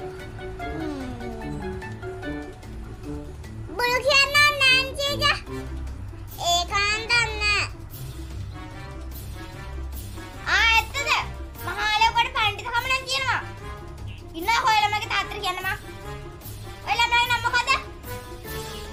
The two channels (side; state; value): both; identical; correlation 1.00